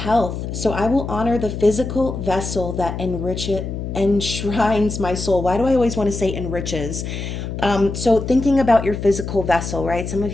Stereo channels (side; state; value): left; noise; hum, 6 dB below the sound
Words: So I will honor the physical vessel that enshrines my soul. Why do I always want to say enriches? So thinking about your physical vessel, right? Some of